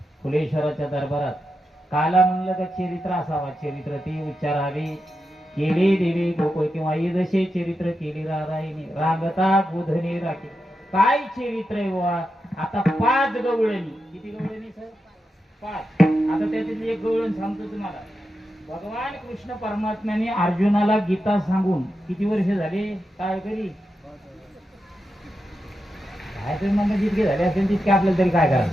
फुलेश्वराच्या दरबारात काला म्हणलं का चरित्र असावा चरित्र ती उच्चारावी केली देवी गोकुळ किंवा जसे चरित्र केली राधाईने रांगता गोधनी राखी काय चरित्र आहे बुवा आता 5 गवळणी किती गवळणी सर 5 आता त्यातील एक गवळण सांगतो तुम्हाला भगवान कृष्ण परमात्म्याने अर्जुनाला गीता सांगून किती वर्ष झाले काय करी काय तरी म्हणणं जितके झाले असेल तितके आपल्याला तरी काय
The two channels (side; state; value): both; normal; correlation 0.88